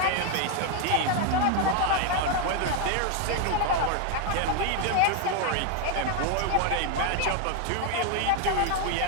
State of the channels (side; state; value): both; different; correlation 0.01